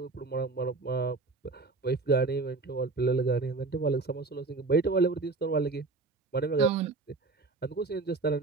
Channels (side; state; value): left; quieter; 3.8 dB